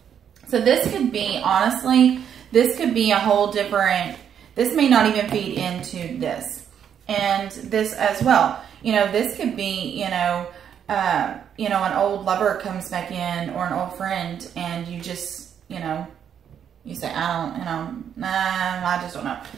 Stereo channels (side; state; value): left; quieter; 8.6 dB